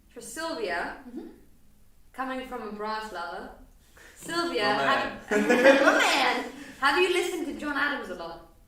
for Silvia, coming from a brass lover. Sylvia, my man, have you listened to John Adams a lot?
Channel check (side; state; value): both; identical; correlation 1.00